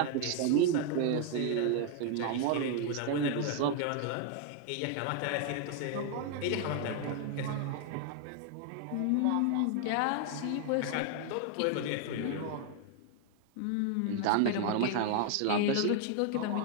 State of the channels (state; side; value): different; both; correlation 0.01